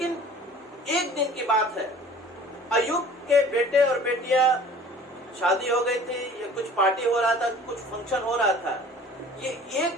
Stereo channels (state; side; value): normal; both; correlation 0.47